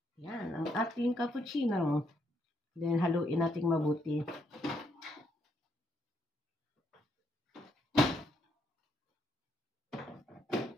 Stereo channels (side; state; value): both; normal; correlation 0.75